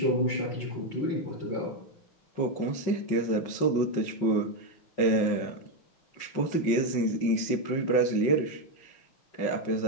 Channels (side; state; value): right; late; 5.5 ms